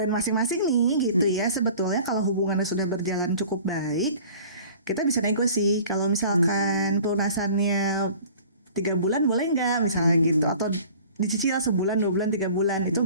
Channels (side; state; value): both; inverted; correlation -0.46